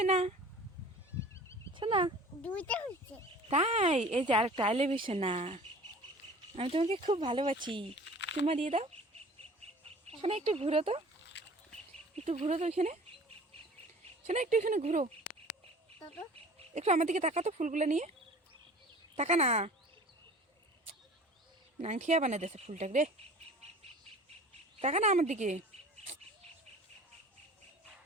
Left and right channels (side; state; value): both; normal; correlation 0.44